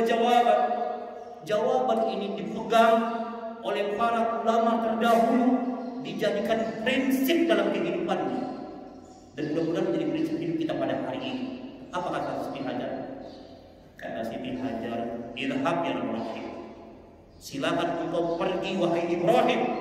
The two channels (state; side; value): identical; both; correlation 1.00